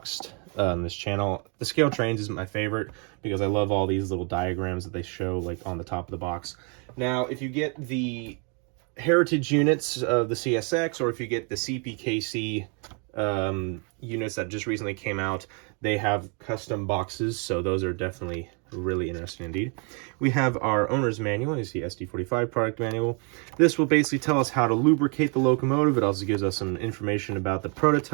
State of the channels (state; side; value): quieter; left; 36.7 dB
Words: on this channel, the ScaleTrains is my favorite because I love all these little diagrams that they show like on the top of the box. Now, if you get the heritage units of the CSX, or if you get the CPKC units that just recently came out, they have custom boxes, so those are definitely really interesting indeed. We have our owner's manual. You see SD45 product manual. This will basically tell us how to lubricate the locomotive. It also gives us some information about the